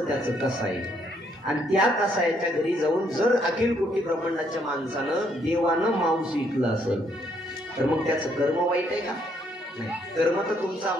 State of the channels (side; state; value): both; normal; correlation 0.70